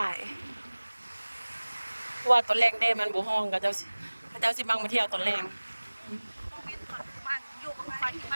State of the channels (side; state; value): both; inverted; correlation -1.00